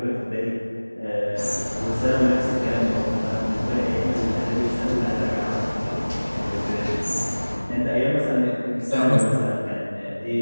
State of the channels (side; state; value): both; inverted; correlation -1.00